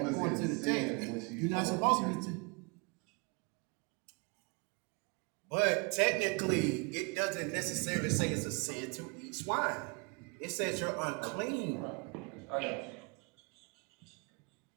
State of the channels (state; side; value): quieter; left; 31.5 dB